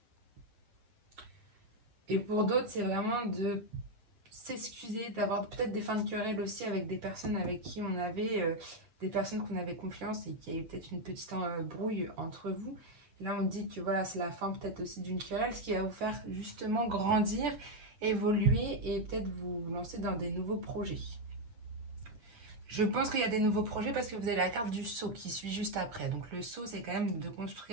Et pour d'autres, c'est vraiment de s'excuser, d'avoir peut-être des fins de querelle aussi avec des personnes avec qui on avait... des personnes qu'on avait confiance et qu'il y a eu peut-être une petite brouille entre vous. Et là, on dit que voilà, c'est la fin peut-être aussi d'une querelle, ce qui va vous faire justement grandir, évoluer et peut-être vous lancer dans des nouveaux projets. Je pense qu'il y a des nouveaux projets parce que vous avez la carte du sceau qui suit juste après. Donc le sceau, c'est quand même de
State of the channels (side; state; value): left; late; 8.1 ms